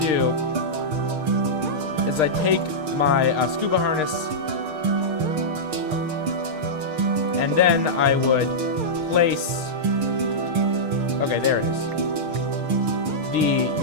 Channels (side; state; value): left; late; 6.5 ms